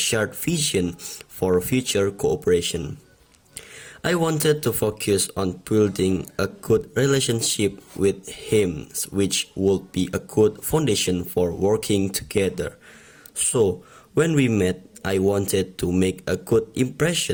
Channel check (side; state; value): both; identical; correlation 1.00